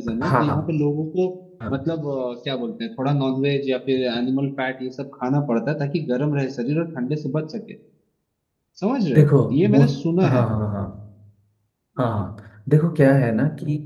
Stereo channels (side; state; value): both; identical; correlation 1.00